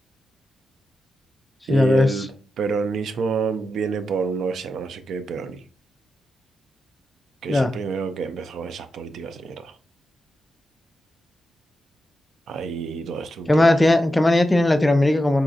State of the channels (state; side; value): normal; both; correlation 0.88